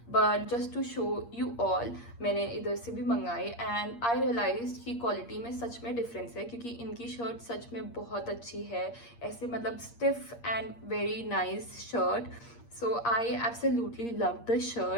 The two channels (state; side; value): late; right; 8.5 ms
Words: But just to show you all मैंने इधर से भी मंगाई एंड आई रियलाइज कि क्वालिटी में सच में डिफरेंस है क्योंकि इनकी शर्ट सच में बहुत अच्छी है. ऐसे मतलब stiff and very nice shirt. So I absolutely loved the